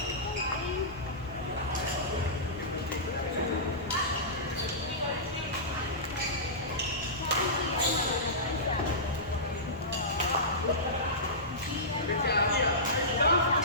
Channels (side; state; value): both; normal; correlation -0.18